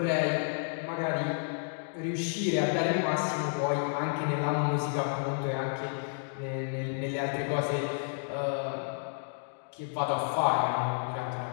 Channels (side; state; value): right; silent; digital silence